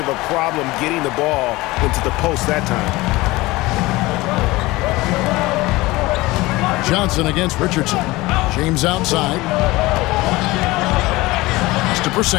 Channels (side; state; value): right; quieter; 20.4 dB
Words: a problem getting the ball into the post that time. Johnson against Richardson. James outside. It's to